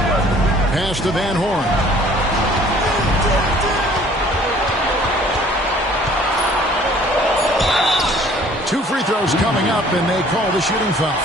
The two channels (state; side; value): normal; both; correlation 0.54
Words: Pass to Van Horn. Two free throws coming up, and they call the shooting foul.